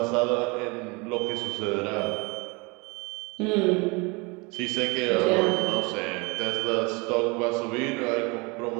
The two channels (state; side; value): quieter; left; 28.3 dB